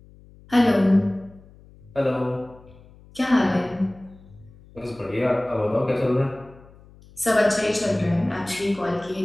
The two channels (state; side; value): noise; left; hum, 24 dB below the sound